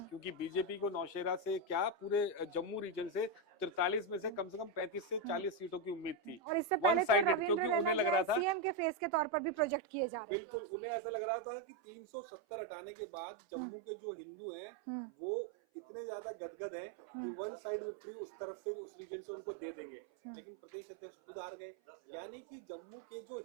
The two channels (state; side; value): drops out; left; at 9.7 s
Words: बीजेपी को नौशेरा से क्या पूरे जम्मू रीजन से 43 में से कम 35 से 40 सीटों की उम्मीद थी। और इससे पहले तो रविंद्र रैना लग रहा था सीएम के फेस के तौर पर भी प्रोजेक्ट किए जा रहे हैं। बिल्कुल, उन्हें ऐसा लग रहा था कि 370 हटाने के बाद जम्मू के जो हिंदू हैं वो इतने ज्यादा गदगद हैं कि वन साइड विक्ट्री उस तरफ से उस रीजन से उनको दे देंगे, लेकिन प्रदेश अध्यक्ष खुद हार गए। यानी कि जम्मू के जो